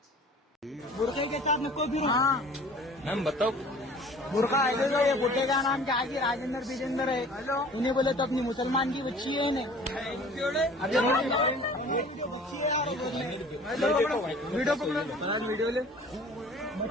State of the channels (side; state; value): both; normal; correlation 0.47